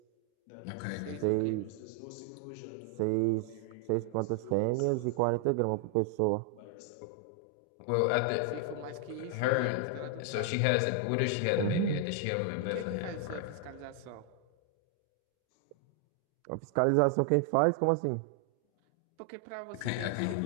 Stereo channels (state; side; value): different; both; correlation 0.00